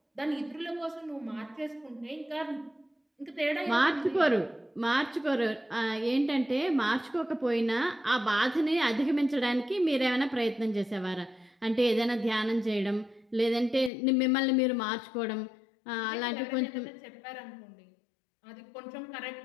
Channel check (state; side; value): drops out; right; at 13.9 s